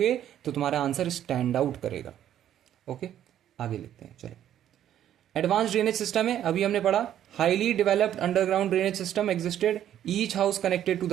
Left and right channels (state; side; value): quieter; left; 11.0 dB